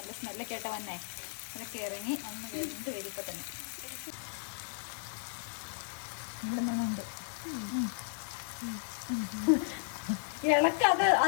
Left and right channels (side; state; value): right; silent; 55 dB below the other